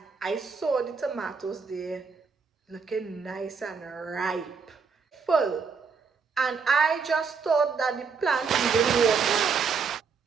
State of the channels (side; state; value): left; quieter; 5.4 dB